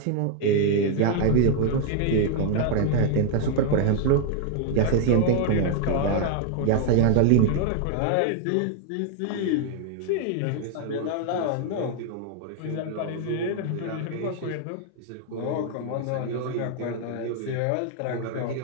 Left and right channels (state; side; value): different; both; correlation 0.00